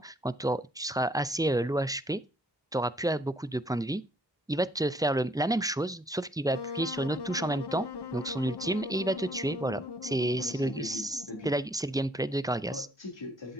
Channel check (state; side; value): normal; both; correlation 0.65